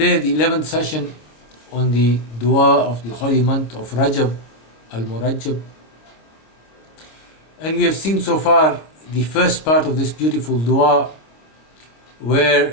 the 11th session on the dua of the holy month of Rajab, al-Murajab. And we have seen so far the first part of this beautiful dua,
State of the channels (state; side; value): late; right; 26 ms